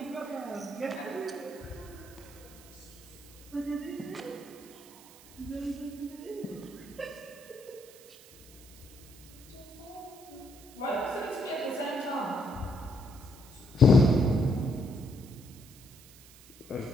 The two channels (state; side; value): noise; right; hiss, 21 dB below the sound